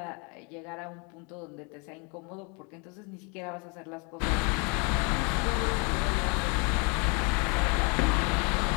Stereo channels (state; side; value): quieter; right; 33.2 dB